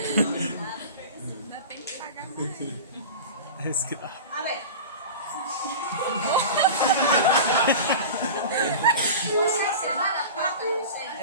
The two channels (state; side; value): inverted; both; correlation -0.32